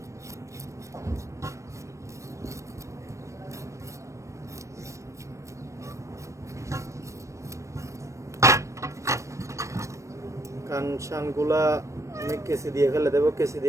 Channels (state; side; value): late; left; 0.15 ms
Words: কান শানগুলা আমি কেসি দিয়ে ফেলে দেবো, কেসি